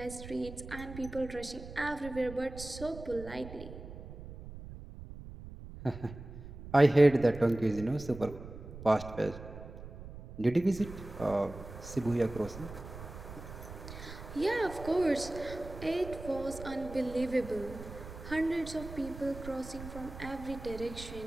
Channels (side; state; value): right; noise; rumble, 13 dB below the sound